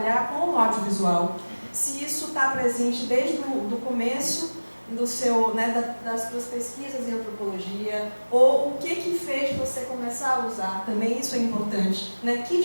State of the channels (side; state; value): both; inverted; correlation -1.00